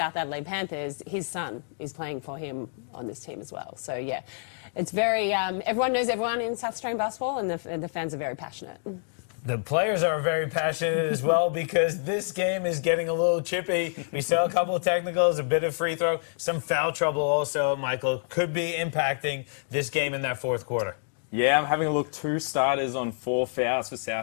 Adelaide Panthers, his son is playing for him on this team as well. So, yeah, it's very, everyone knows everyone in South Australian basketball, and the fans are very passionate. The players are very passionate as well because this game is getting a little chippy. We saw a couple of technicals, a bit of free throw, some foul trouble also, Michael, could be impacting this game in that fourth quarter. Yeah, I'm having a look. 2 starters on 4 fouls for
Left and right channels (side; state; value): right; silent; digital silence